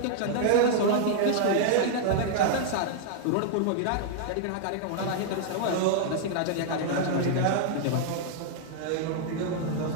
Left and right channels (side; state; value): both; different; correlation -0.01